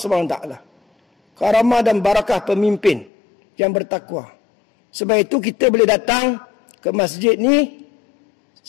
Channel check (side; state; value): right; drops out; at 3.1 s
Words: Karamah dan barakah pemimpin yang bertakwa. Sebab itu kita boleh datang ke masjid ni,